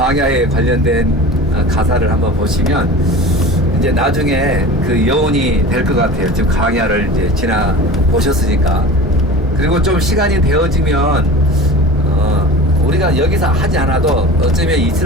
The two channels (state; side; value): normal; both; correlation 0.35